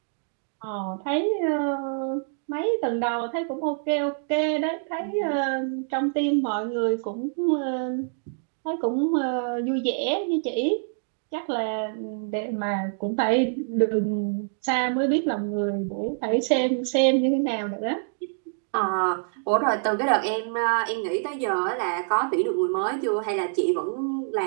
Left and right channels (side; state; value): left; silent; digital silence